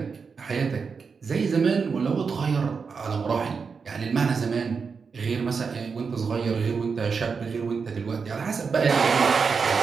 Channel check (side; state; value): left; quieter; 5.4 dB